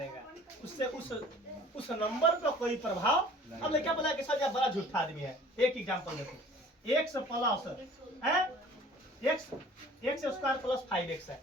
उससे उस नंबर पर कोई प्रभाव। अब क्या बोला कि सर बड़ा झूठा आदमी है। एक एग्जांपल देखो, x प्लस है x स्क्वायर प्लस 5x है।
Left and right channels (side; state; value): both; normal; correlation 0.49